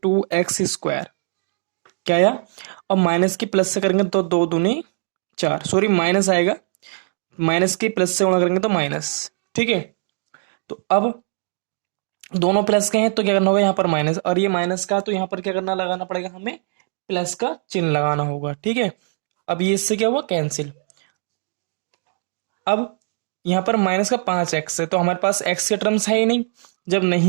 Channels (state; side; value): silent; left; digital silence